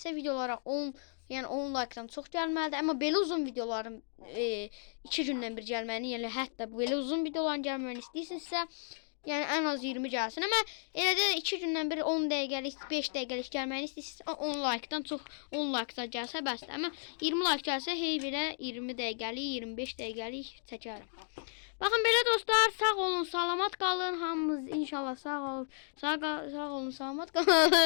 videolara 10 like-dan çox gəlməlidir. Amma belə uzun videoların 2 gündən bir gəlməyini, yəni hətta belə uzun videoların gəlməyini istəyirsinizsə, yəni ən az 20 gəlsin. Amma elə də 2 gündən bir 10 dəqiqəlik, 5 dəqiqəlik gəlməyini istəyirsinizsə 10 like-dan çox 10 like-da gəlsə bəsdir. Amma 20 like gəlsə hey belə 20 dəqiqəlik, 25 dəqiqəlik çəkərəm. Baxın belə dostlar, sağ olun, salamat qalın. Hamımız inşallah sağ olun, salamat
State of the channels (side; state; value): right; silent; digital silence